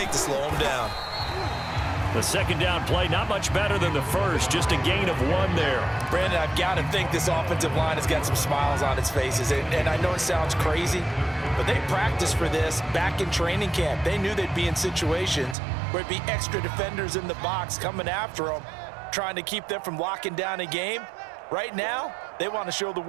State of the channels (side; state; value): left; drops out; at 15.6 s